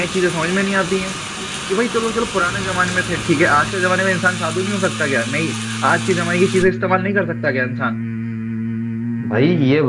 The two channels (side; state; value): both; identical; correlation 1.00